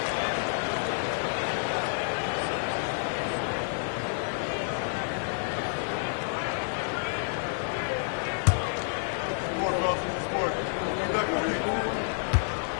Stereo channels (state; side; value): silent; right; digital silence